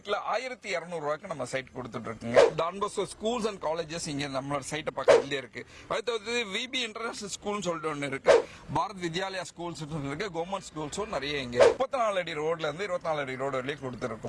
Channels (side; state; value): both; identical; correlation 1.00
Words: 1,200 ரூபாய்க்கு நம்ம சைட் கொடுத்துட்டு இருக்குங்க. டான்போஸ்கோ ஸ்கூல்ஸ் அண்ட் காலேஜஸ் இங்க நம்மளோட சைட்டை பக்கத்துலயே இருக்கு. அடுத்தது விபி இன்டர்நேஷனல் ஸ்கூல்னு சொல்லிட்டு ஒன்று இருக்கு, பாரத் வித்யாலயா ஸ்கூல்ஸ் இருக்கு, கவர்மெண்ட் ஸ்கூல்ஸும் நிறைய இங்க 34 அடி ரோட்ல இருந்து 24 அடி ரோடு வரையும்